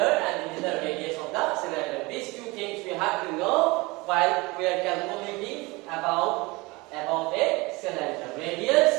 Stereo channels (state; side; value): quieter; left; 24.0 dB